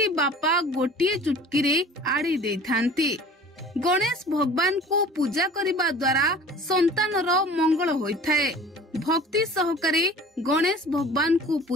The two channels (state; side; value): normal; both; correlation 0.45